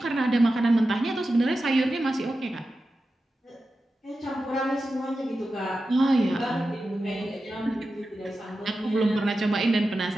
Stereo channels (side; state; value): both; normal; correlation 0.92